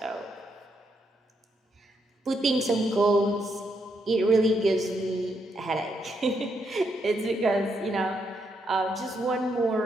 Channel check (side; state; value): both; normal; correlation 0.78